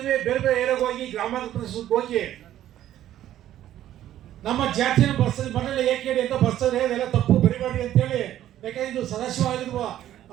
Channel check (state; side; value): quieter; left; 12.4 dB